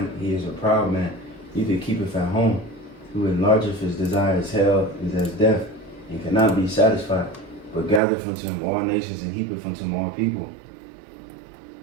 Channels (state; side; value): drops out; left; at 8.0 s